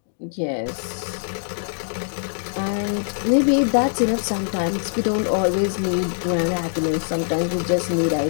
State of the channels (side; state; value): right; silent; digital silence